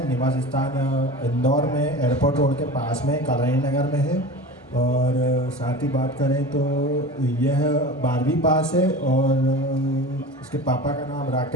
निवास स्थान इंदौर में, एयरपोर्ट रोड के पास में, कलानी नगर में है। और साथ ही बात करें तो यह 12वीं पास है और उसके पापा का नाम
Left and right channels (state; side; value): normal; both; correlation 0.33